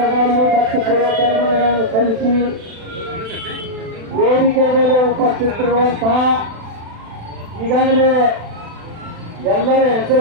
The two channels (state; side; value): late; left; 36 ms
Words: ಭಕ್ತಿ ಪೂರ್ವಕರಮಗಳನ್ನು ಸಲ್ಲಿಸಿ ವೇದಿಕೆ ಮೇಲೆ ಉಪಸ್ಥಿತರಿರುವಂತಹ ಈಗಾಗಲೇ ಎಲ್ಲರ